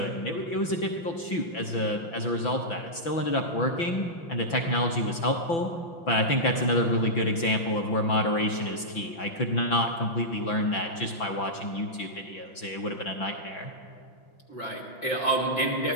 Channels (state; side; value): late; right; 6.0 ms